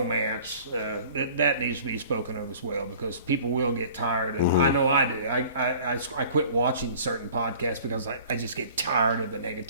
That needs to be spoken of as well, because people will get tired. And I know I do. I quit watching certain podcasts because I just get tired of the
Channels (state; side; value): inverted; both; correlation -0.48